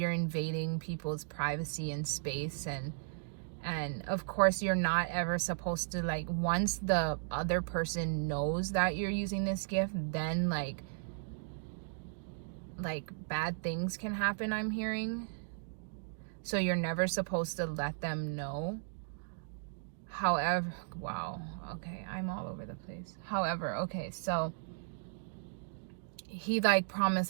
invading people's privacy and space. And of course, you're not ever supposed to, like, once the other person knows that you're using this gift, then like bad things can happen, I'm hearing. So you're never supposed to let them know. However, wow, okay, I'm all over the place. However, okay, so he like promised,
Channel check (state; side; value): silent; left; digital silence